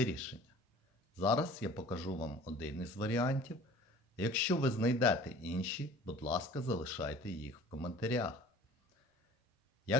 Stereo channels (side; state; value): both; normal; correlation 0.46